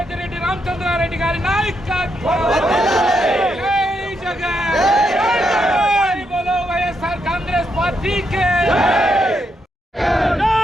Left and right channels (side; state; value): both; normal; correlation 0.80